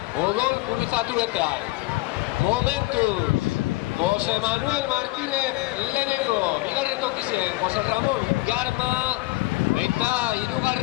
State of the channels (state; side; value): quieter; right; 20.4 dB